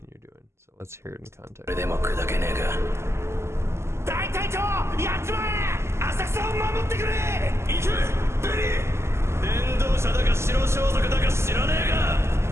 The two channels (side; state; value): left; late; 0.13 ms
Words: you're doing. So let's hear it in context.